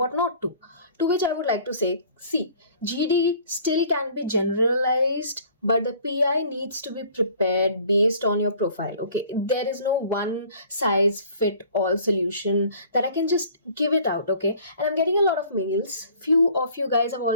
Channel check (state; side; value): inverted; both; correlation -0.52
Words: not to. To which I would like to say, see, GD still can be generalized, but the PI needs to be prepared based on your profile. Okay, there is no one size fit all solution that I can just give it out. Okay, and I'm getting a lot of mails. Few of you guys have